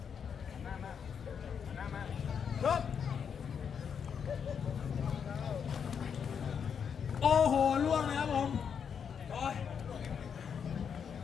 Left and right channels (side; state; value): right; quieter; 7.1 dB